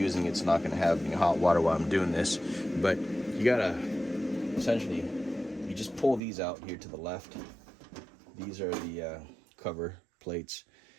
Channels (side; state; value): left; drops out; at 6.2 s